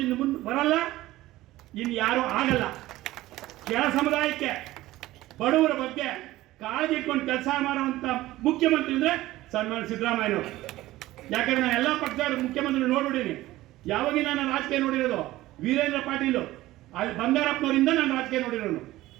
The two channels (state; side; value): quieter; left; 16.7 dB